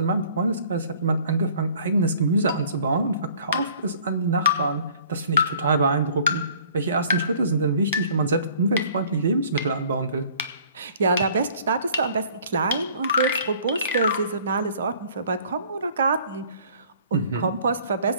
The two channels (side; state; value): both; inverted; correlation -0.54